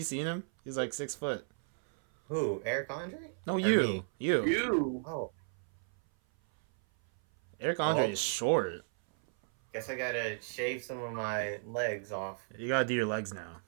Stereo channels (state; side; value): silent; left; 55 dB below the other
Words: seen him? He's like 6 foot. Who? Eric Andre? No, Or you. me? You. You. Oh, Eric Andre Oh. is short. guess I gotta shave some of my legs off. You gotta do your legs now.